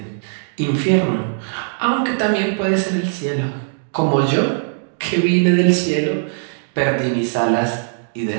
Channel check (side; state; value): left; silent; digital silence